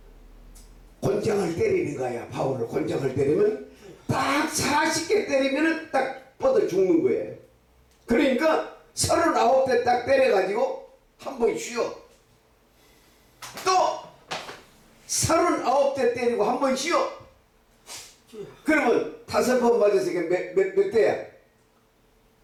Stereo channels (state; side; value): identical; both; correlation 1.00